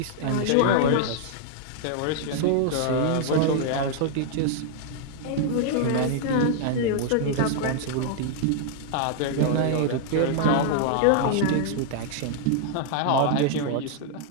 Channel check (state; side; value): different; both; correlation -0.01